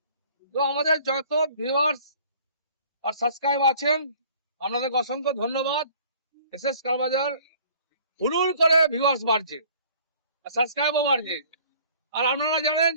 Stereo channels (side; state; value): both; inverted; correlation -0.53